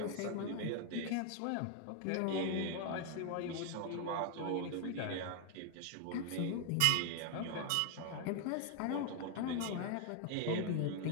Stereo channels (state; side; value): different; both; correlation 0.00